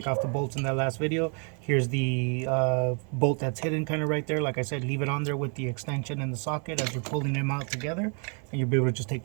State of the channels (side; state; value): left; quieter; 38.5 dB